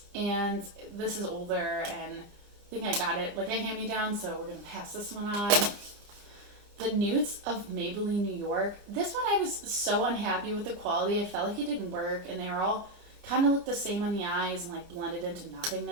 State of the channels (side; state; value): left; late; 29 ms